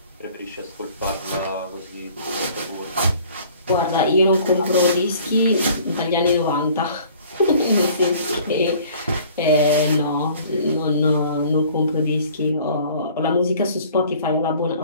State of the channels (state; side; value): inverted; both; correlation -0.52